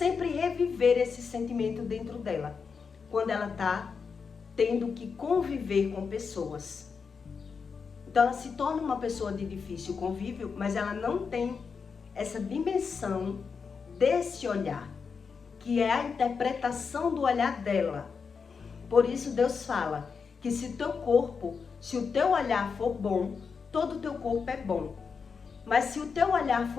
reviver esse sentimento dentro dela, quando ela está tendo que conviver com pessoas. Então ela se torna uma pessoa de difícil convívio, mas ela não tem essa dimensão desse olhar, que é a interpretação do olhar dela. Por isso Deus fala que se o teu olhar for bom, todo o teu corpo é bom. Mas se o teu olhar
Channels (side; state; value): right; quieter; 5.6 dB